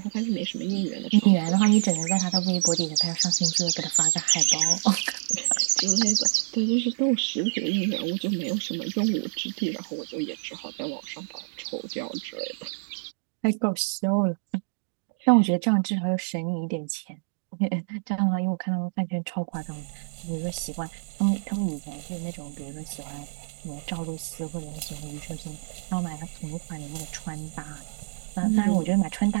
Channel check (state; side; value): silent; left; digital silence